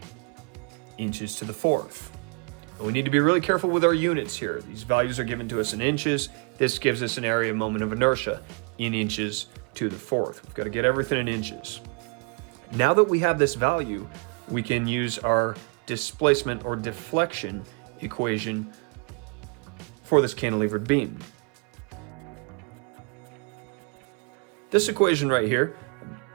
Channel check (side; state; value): left; quieter; 35.1 dB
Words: inches to the fourth. We need to be really careful with our units here. These values are given to us in inches. This gives us an area moment of inertia in inches to the fourth. We've got to get everything in inches. Now that we have this value, we can use our displacement or deflection equation for this cantilevered beam. This equation right here